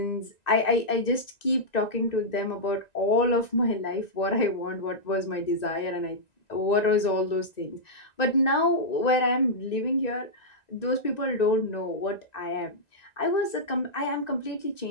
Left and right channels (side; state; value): right; late; 1.9 ms